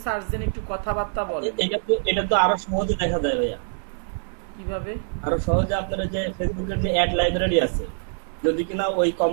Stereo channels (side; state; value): left; silent; digital silence